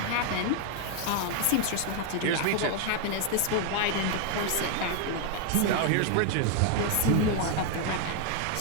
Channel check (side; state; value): both; different; correlation 0.00